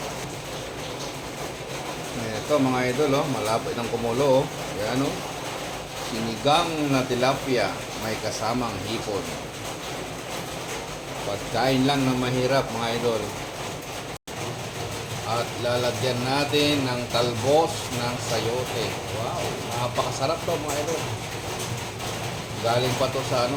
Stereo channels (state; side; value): identical; both; correlation 1.00